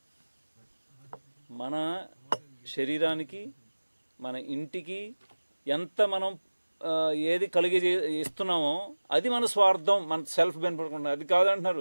మన శరీరానికి, మన ఇంటికి ఎంత మనం ఏది కలిగి ఇస్తున్నామో అది మన స్వార్థం, మన సెల్ఫ్ బెనిఫిట్. అది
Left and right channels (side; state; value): both; inverted; correlation -1.00